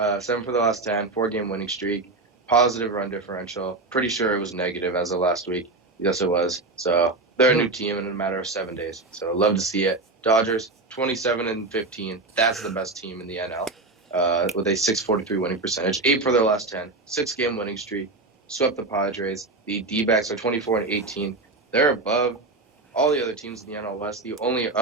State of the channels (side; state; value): left; quieter; 3.3 dB